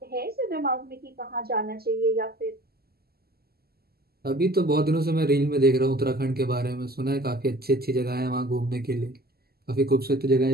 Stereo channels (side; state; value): left; late; 0.45 ms